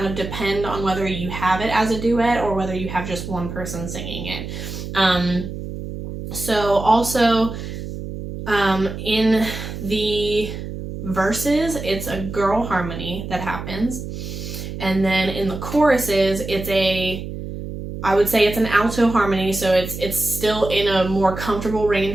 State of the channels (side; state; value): right; noise; hum, 8 dB below the sound